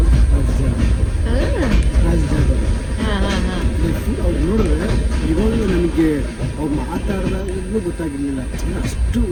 ರಾಜಜಾಗ ಅವ್ರು ನೋಡಿದ್ರೆ ಇವಾಗಲೂ ನನಗೆ ಅವ್ರು ಮಾತಾಡಿದಾಗಲೂ ಗೊತ್ತಾಗಿರಲಿಲ್ಲ. ಅಷ್ಟು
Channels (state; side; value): identical; both; correlation 1.00